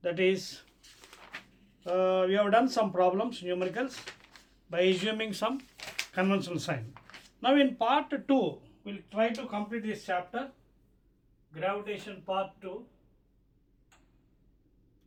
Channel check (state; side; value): identical; both; correlation 1.00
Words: That is we have done some problems numericals by assuming some conventional sign. Now in part 2 will try to complete this chapter gravitation part 2.